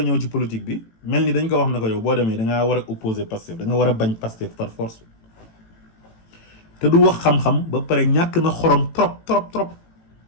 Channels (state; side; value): late; right; 18 ms